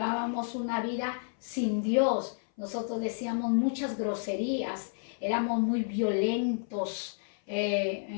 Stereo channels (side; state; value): right; silent; 57 dB below the other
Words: una vida sin Dios, nosotros decíamos muchas groserías, éramos muy violentos,